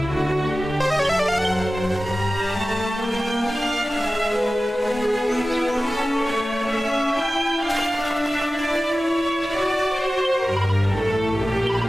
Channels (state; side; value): normal; both; correlation 0.96